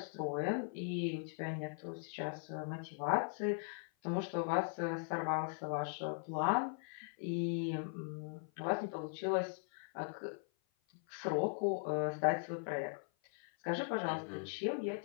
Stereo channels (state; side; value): silent; right; 51 dB below the other